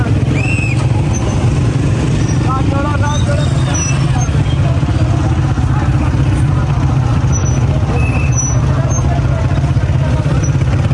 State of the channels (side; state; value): both; identical; correlation 1.00